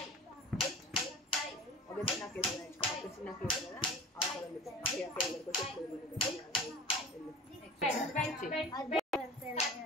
tight ఒక చిన్న case ఒక చిన్న case కదా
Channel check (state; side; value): normal; both; correlation 0.36